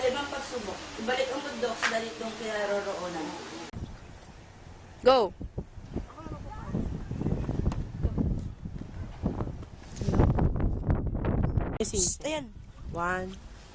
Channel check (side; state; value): both; identical; correlation 1.00